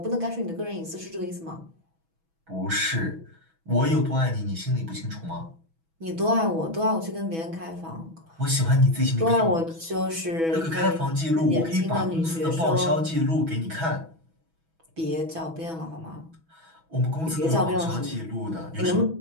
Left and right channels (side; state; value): left; late; 6.1 ms